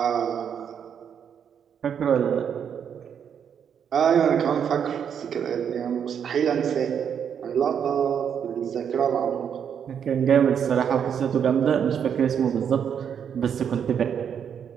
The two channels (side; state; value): left; quieter; 8.0 dB